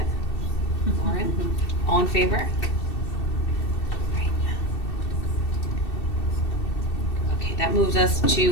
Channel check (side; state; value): right; late; 2.7 ms